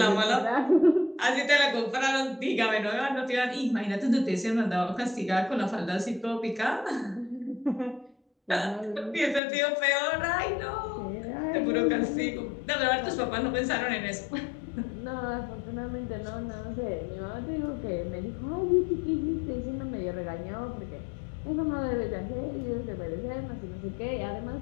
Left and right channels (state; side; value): drops out; right; at 9.4 s